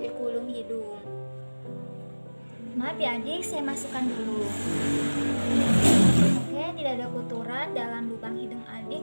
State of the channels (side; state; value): both; inverted; correlation -1.00